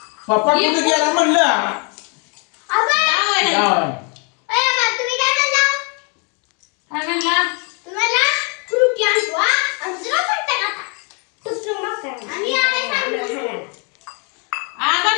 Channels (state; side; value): quieter; right; 36.0 dB